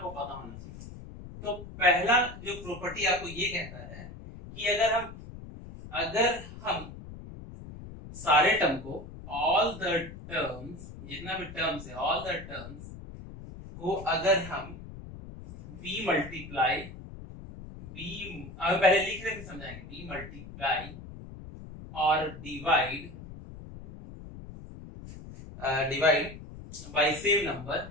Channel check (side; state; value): left; noise; rumble, 14 dB below the sound